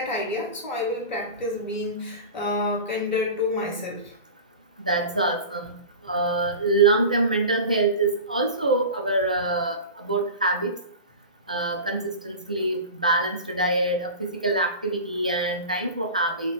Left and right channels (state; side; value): inverted; both; correlation -0.31